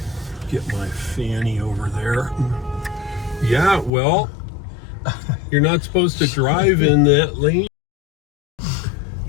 get my fanny over there. Yeah, well, you're not supposed to drive in that lane.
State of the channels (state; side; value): drops out; right; at 3.9 s